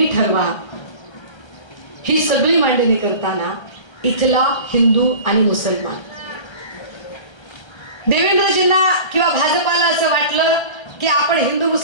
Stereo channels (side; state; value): right; late; 1.3 ms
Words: ठरवा. ही सगळी मांडणी करताना इथला हिंदू आणि मुसलमान. देवेंद्रजींना किंवा भाजपाला असं वाटलं की आपण हिंदू